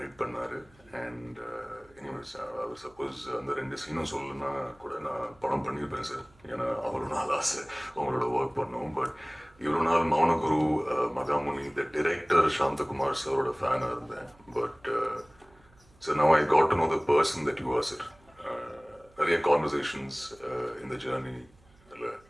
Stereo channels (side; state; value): right; noise; hum, 29 dB below the sound